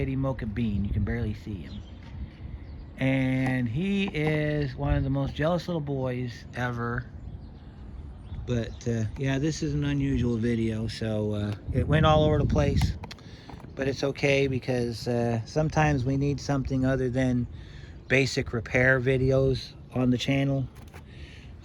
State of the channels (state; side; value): identical; both; correlation 1.00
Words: Mocha Bean. You can barely see him. And he is one of the most jealous little boys ever. But yeah, this is an unusual video, so it went all over the place. But it's okay, because sometimes we need something other than basic repair videos on the channel.